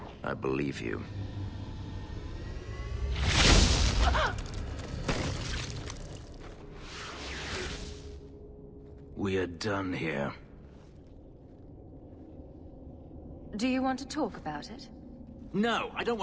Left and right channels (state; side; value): identical; both; correlation 1.00